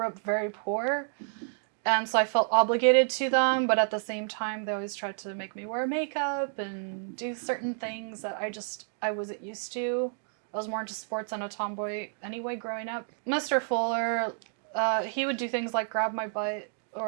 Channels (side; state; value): left; silent; digital silence